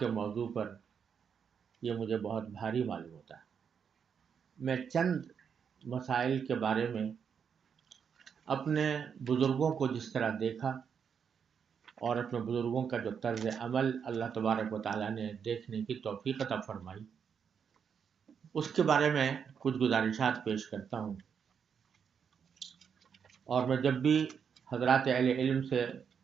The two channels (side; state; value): left; quieter; 7.0 dB